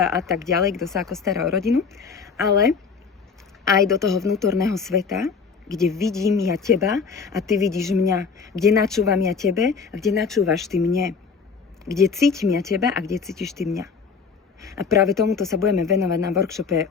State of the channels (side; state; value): right; quieter; 5.4 dB